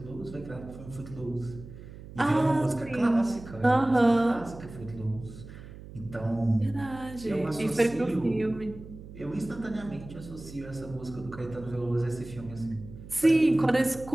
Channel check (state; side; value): noise; right; hum, 15 dB below the sound